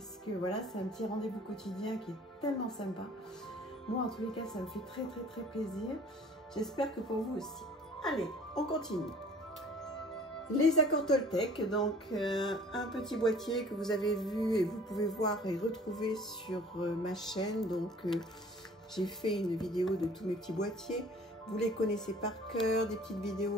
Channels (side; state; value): both; normal; correlation 0.50